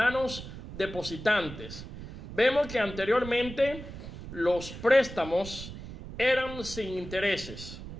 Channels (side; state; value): right; noise; rumble, 12 dB below the sound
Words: depositantes. Vemos que anteriormente los préstamos eran sin intereses.